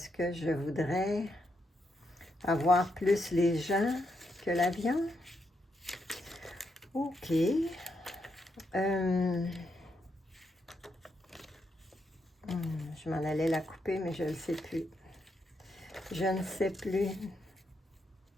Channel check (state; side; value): normal; both; correlation 0.81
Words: que je voudrais avoir plus les gens que l'avion? OK. Je m'en allais la couper, mais je ne sais plus. Je ne sais plus.